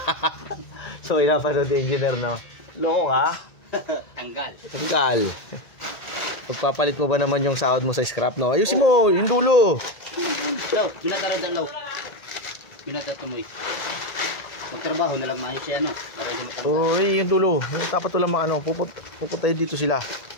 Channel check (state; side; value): late; right; 1.8 ms